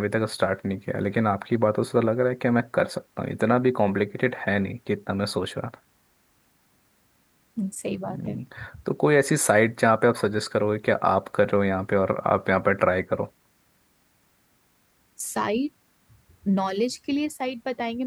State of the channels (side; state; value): both; identical; correlation 1.00